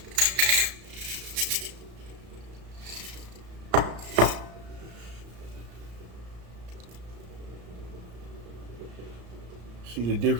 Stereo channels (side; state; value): left; late; 34 ms